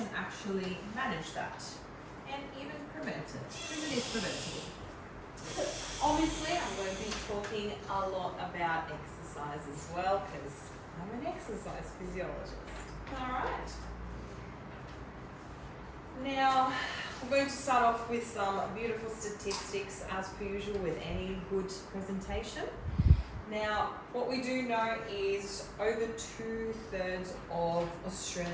actually manage that and even prevent it, because it is preventable. Obviously, I'm going to be talking a lot about exercise as well, because I'm an exercise physiologist. Alright. Now, we're going to start off with some beautiful statistics as per usual with any good presentation. Now, what we do know is over 2/3 of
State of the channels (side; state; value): both; identical; correlation 1.00